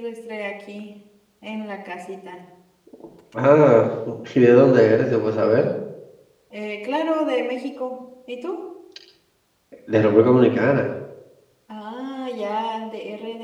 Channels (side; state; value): both; identical; correlation 1.00